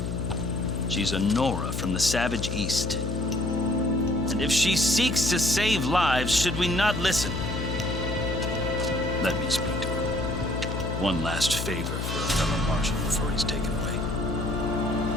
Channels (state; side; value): noise; left; hum, 3 dB below the sound